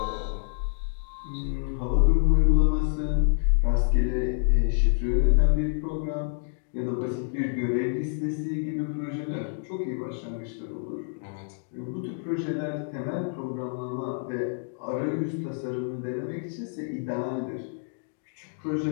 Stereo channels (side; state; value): right; silent; digital silence